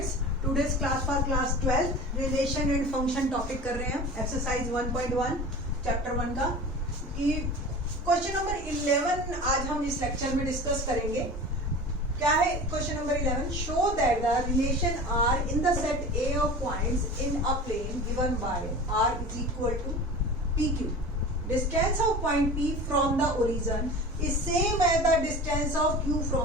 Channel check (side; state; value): both; normal; correlation 0.36